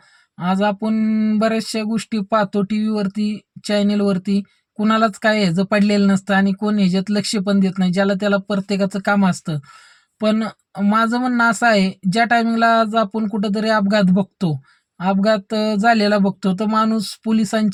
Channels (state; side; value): identical; both; correlation 1.00